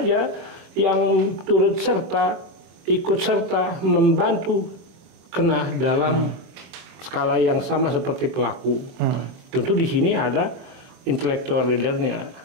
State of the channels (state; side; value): late; left; 23 ms